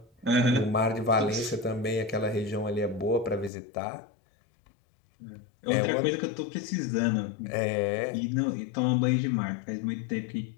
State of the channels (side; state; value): right; drops out; at 3.5 s